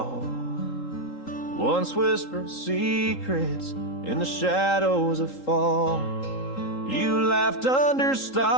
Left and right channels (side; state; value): right; late; 3.8 ms